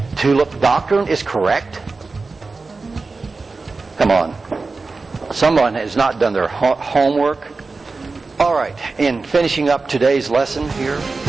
tulip doctrine is correct? Come on. Someone has not done their homework. All right, in finishing up today's lesson here.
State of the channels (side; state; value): left; quieter; 3.9 dB